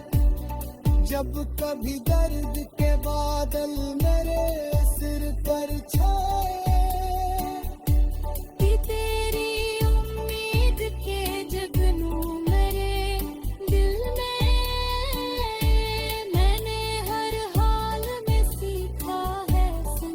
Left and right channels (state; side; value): identical; both; correlation 1.00